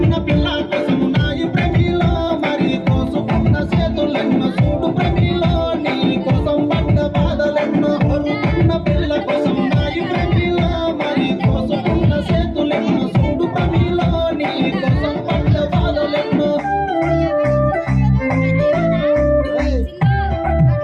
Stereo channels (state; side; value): identical; both; correlation 1.00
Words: పిల్ల కోసము నాయి ప్రేమిలో మరి కోసుకున్న చేతులెన్నో చూడు ప్రేమిలో నీ కోసం పడ్డ బాధలెన్నో కొరుకున్న పిల్ల కోసం నాయి ప్రేమిలో మరి కోసుకున్న చేతులెన్నో చూడు ప్రేమిలో నీ కోసం పడ్డ బాధలెన్నో